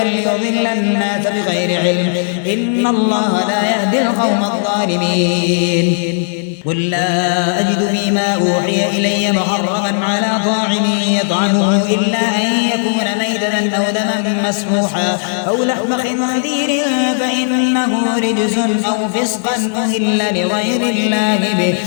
الناس بغير علم إن الله لا يهدي القوم الظالمين قل لا أجد فيما أوحي إلي محرما على طاعم يطعمه إلا أن يكون ميتة أو دما مسفوحا أو لحم خنزير فإنه رجس أو فسقا أهل لغير الله به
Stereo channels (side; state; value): right; silent; digital silence